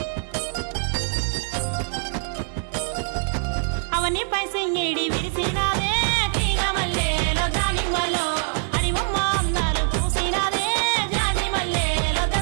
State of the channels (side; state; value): left; silent; digital silence